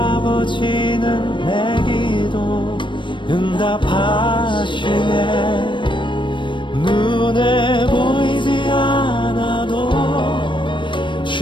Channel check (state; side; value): late; right; 0.23 ms